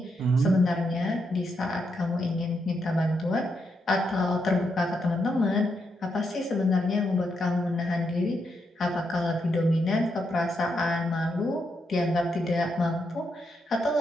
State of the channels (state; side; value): normal; both; correlation 0.81